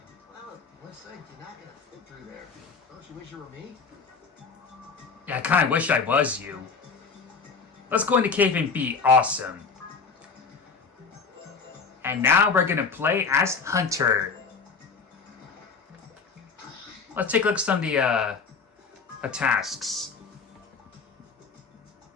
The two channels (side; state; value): right; quieter; 5.1 dB